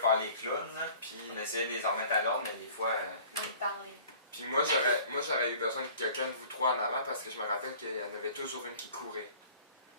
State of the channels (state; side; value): inverted; both; correlation -0.48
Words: les clowns. Là. Puis, On essayait de les remettre à l'ordre, mais des fois. Même parler. puis moi, j'aurais eu besoin de quelqu'un de vous 3 en avant parce que je me rappelle qu'il y en avait toujours une qui courait.